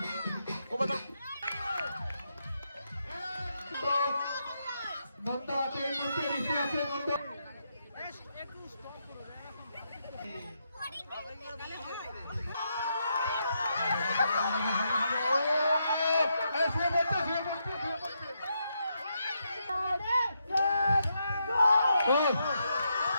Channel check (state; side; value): inverted; both; correlation -0.81